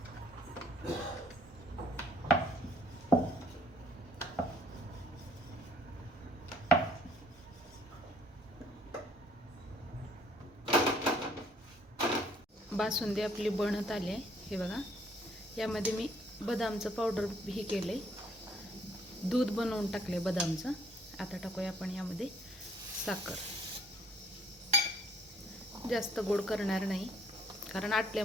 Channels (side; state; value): both; normal; correlation 0.61